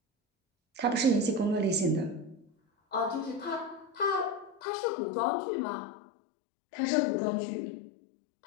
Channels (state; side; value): drops out; right; at 4.6 s